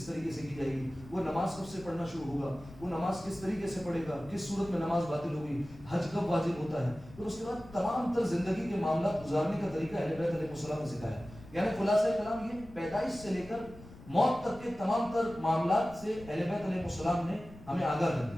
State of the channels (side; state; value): left; noise; rumble, 19 dB below the sound